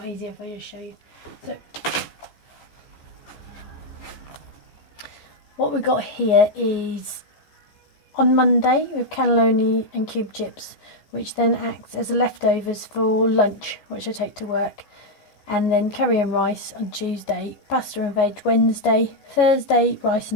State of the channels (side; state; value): right; late; 14 ms